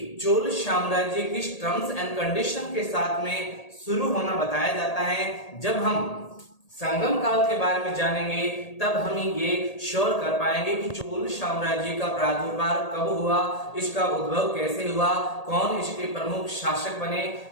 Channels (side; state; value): right; late; 1.8 ms